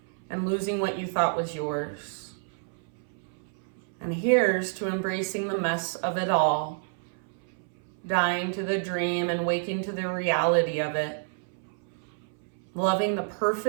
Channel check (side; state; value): left; silent; 59 dB below the other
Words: and losing what you thought was yours. And here's to embracing the mess of it all, dying to the dream and waking to the reality of it, loving the